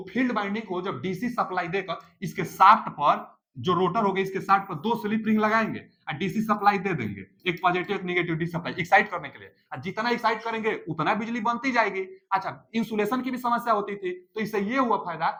फील्ड बाइंडिंग को जब डीसी सप्लाई देकर इसके शाफ्ट पर, जो रोटर हो गया इसके शाफ्ट पर दो स्लिप रिंग लगाएंगे और डीसी सप्लाई दे देंगे, एक पॉजिटिव एक नेगेटिव डीसी सप्लाई एक्साइट करने के लिए, और जितना एक्साइट करेंगे उतना बिजली बनती जाएगी। अच्छा, इंसुलेशन की भी समस्या होती थी, तो इससे ये हुआ फायदा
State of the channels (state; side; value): identical; both; correlation 1.00